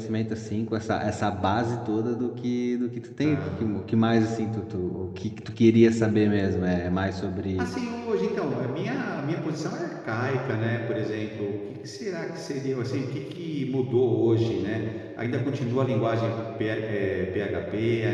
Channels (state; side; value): identical; both; correlation 1.00